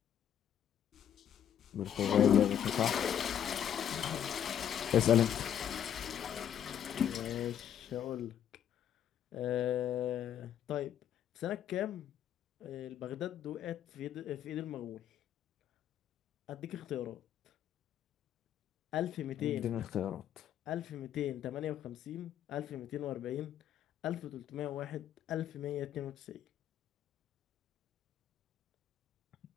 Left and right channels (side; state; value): right; quieter; 9.8 dB